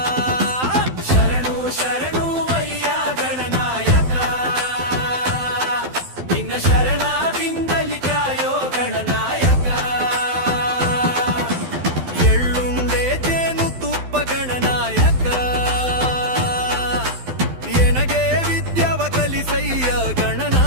ಶರಣು ಶರಣು ವಯ್ಯ ಗಣನಾಯಕ ನಿನ್ನ ಶರಣಾದಿಂದಲಿ ಕಾಯೋ ಗಣನಾಯಕ ಎಳ್ಳುಂಡೆ ಜೇನು ತುಪ್ಪ ಗಣನಾಯಕ ಎನಗೆ ವಿದ್ಯಾವ ಕಲಿಸಯ್ಯ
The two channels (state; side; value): late; left; 12 ms